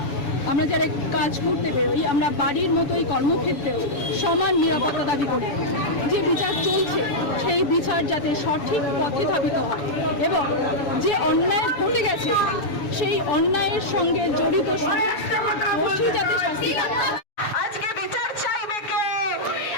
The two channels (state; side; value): late; right; 7.0 ms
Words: আমরা যারা কাজ করতে বেরোই, আমরা বাড়ির মতোই কর্মক্ষেত্রেও সমান নিরাপত্তা দাবি করি। যে বিচার চলছে সেই বিচার যাতে সঠিক পথে ধাবিত হয় এবং যে অন্যায় ঘটে গেছে সেই অন্যায়ের সঙ্গে জড়িত সমস্ত দোষী যাতে শাস্তি পায়।